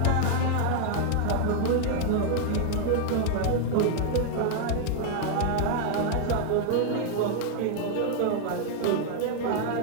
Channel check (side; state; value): both; different; correlation 0.00